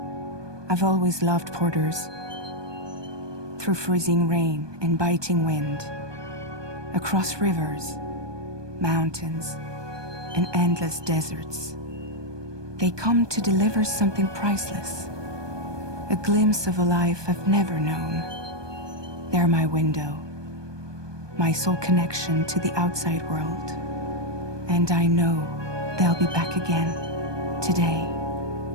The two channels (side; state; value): left; late; 1.2 ms